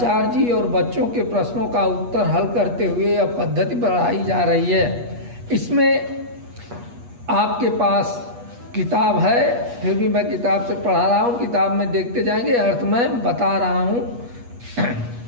जी और बच्चों के प्रश्नों का उत्तर हल करते हुए यह पद्धति बढ़ाई जा रही है। इसमें आपके पास किताब है, फिर भी मैं किताब से पढ़ा रहा हूँ, किताब में देखते जाएंगे, अर्थ मैं बता रहा हूँ।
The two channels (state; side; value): late; left; 8.3 ms